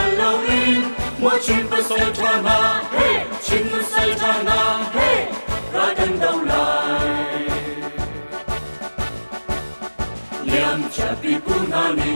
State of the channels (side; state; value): both; inverted; correlation -1.00